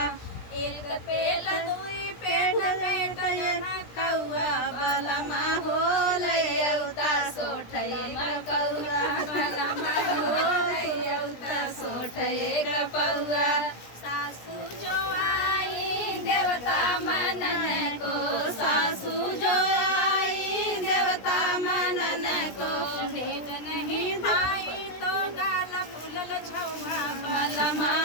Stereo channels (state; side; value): late; right; 17 ms